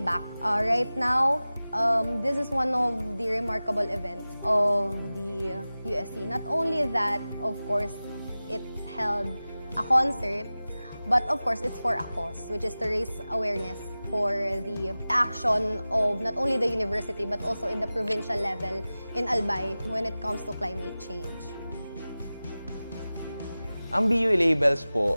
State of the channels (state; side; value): inverted; both; correlation -0.97